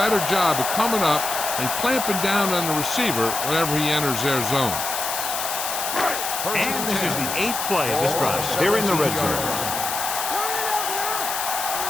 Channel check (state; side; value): noise; left; hiss, 3 dB below the sound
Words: job of coming up and clamping down on the receiver whenever he enters their zone. And this is the 8th play of this drive. They're in the red zone.